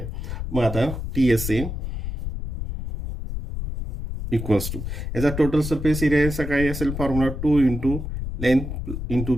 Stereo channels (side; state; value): left; noise; rumble, 5 dB below the sound